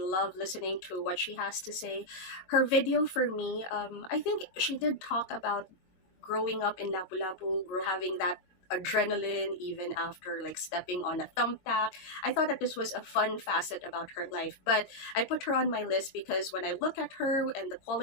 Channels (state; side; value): late; right; 22 ms